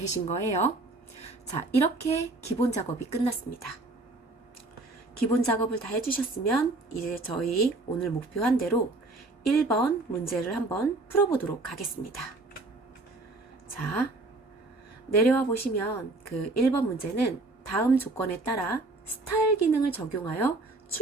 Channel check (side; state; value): left; quieter; 3.1 dB